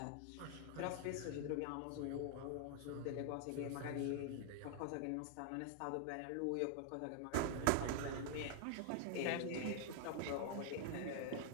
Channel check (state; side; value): different; both; correlation 0.00